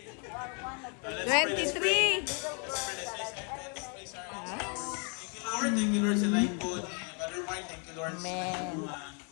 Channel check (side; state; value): right; quieter; 37.5 dB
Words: 23. Thank you Lord sa life po. Brother Mark, thank you Lord sa Amen.